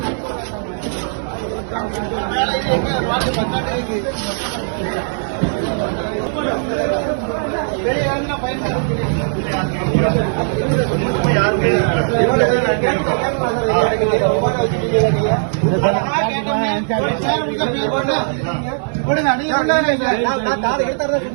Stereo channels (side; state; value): left; silent; digital silence